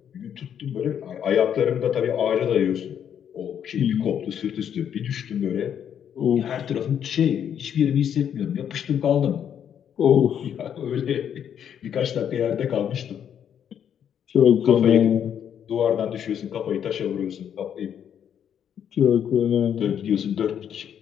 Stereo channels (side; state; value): right; quieter; 8.9 dB